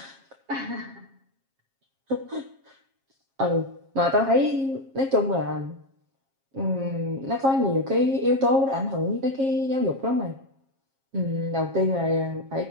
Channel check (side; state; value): left; late; 7.4 ms